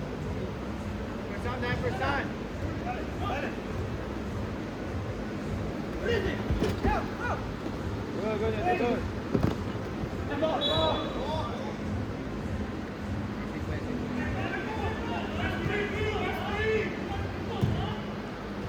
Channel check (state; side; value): identical; both; correlation 1.00